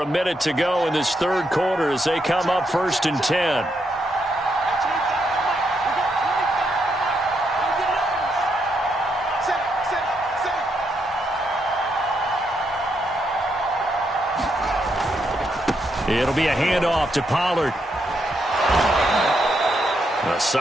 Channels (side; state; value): both; normal; correlation 0.79